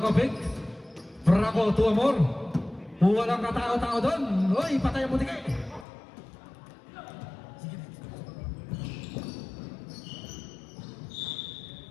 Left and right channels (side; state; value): right; drops out; at 5.9 s